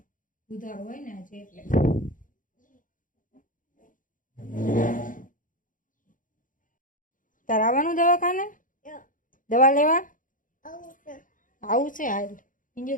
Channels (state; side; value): late; right; 0.39 ms